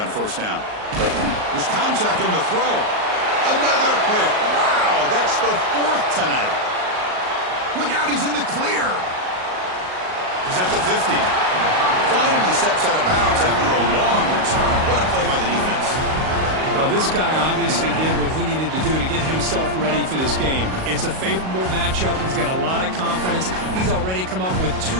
first down. There's contact on the throw. Another pick. Wow, that's the 4th tonight. Look out, he's in the clear. He's at the 50. Finally steps out of bounds after a long return. What a play by the defense. Well, this guy obviously did what he needed to do to get himself ready for this game. It's a favorable matchup. He's got a lot of confidence. He's already come up with 2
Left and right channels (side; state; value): left; late; 38 ms